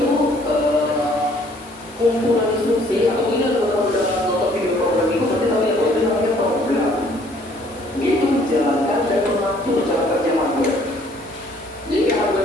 kumpulan instruksi atau ini kalau udah nonton video program itu pasti tahu ya bahwa itu namanya program. Dia itu menjalankan dan mengatur cara kerja hardware. Jadi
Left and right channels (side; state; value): both; normal; correlation 0.60